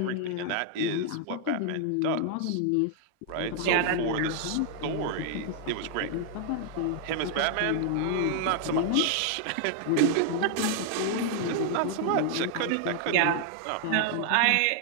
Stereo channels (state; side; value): different; both; correlation 0.00